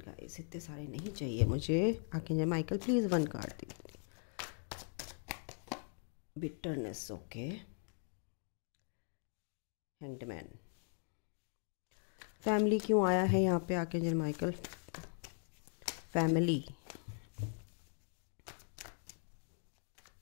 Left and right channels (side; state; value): right; silent; 51 dB below the other